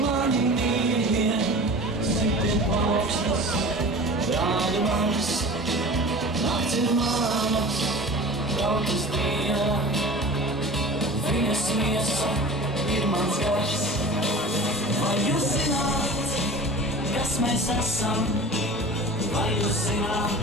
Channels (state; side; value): normal; both; correlation 0.37